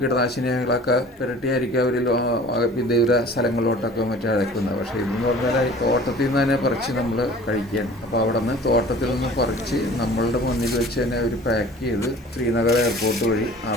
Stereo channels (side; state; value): both; normal; correlation 0.46